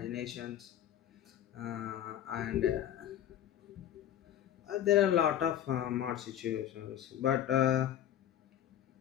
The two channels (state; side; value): quieter; right; 11.0 dB